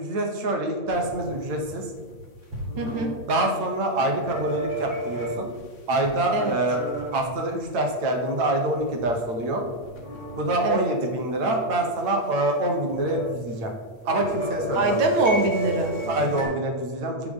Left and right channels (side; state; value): left; late; 8.8 ms